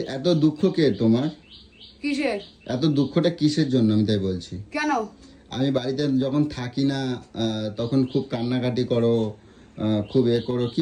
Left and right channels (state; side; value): identical; both; correlation 1.00